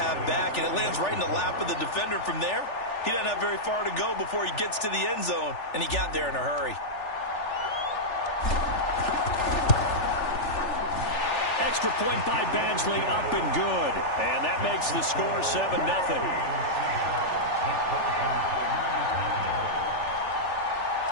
back, and it lands right in the lap of the defender from there. He doesn't have very far to go before he gets to the end zone, and he got there in a hurry. Extra point by Badgley, up and good. And that makes the score 7-0.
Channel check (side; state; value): right; late; 3.4 ms